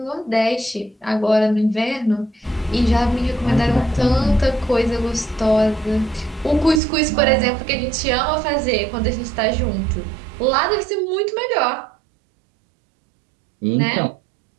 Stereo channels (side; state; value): left; drops out; at 6.8 s